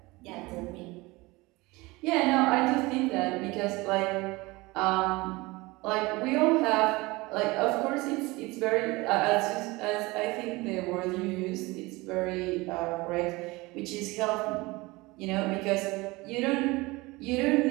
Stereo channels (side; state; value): left; quieter; 22.4 dB